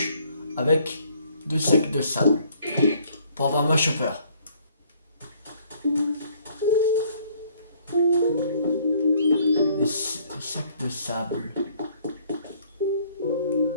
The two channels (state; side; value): inverted; both; correlation -0.62